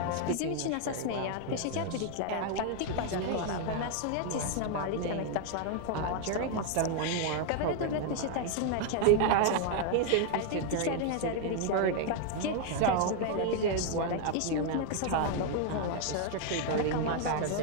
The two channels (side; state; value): both; different; correlation 0.01